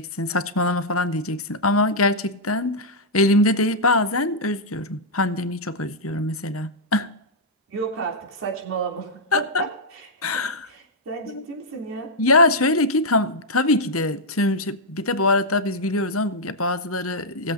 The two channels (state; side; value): normal; both; correlation -0.06